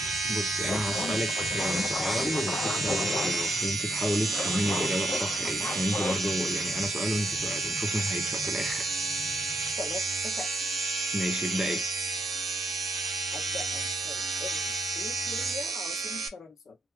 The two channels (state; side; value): normal; both; correlation 0.77